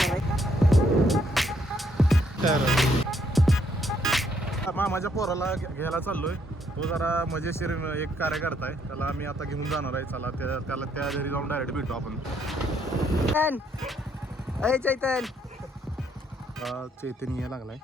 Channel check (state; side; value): normal; both; correlation 0.71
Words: आहे. मामाच्या पोराला घ्यायला चाललोय. तो जरा मजेशीर एक कार्यकर्ता आहे, त्याला आम्ही आता घेऊन जाणार आहे. चला त्याला त्या घरी जाऊन डायरेक्ट भेटू आपण. चैतन चैतन यायला लागलाय.